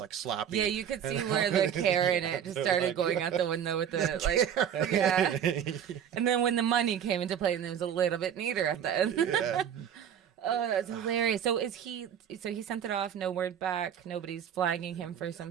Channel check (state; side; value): quieter; left; 8.9 dB